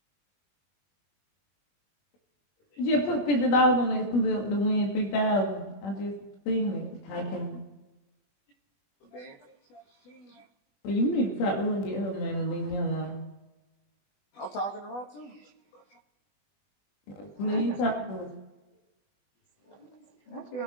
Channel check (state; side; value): late; right; 20 ms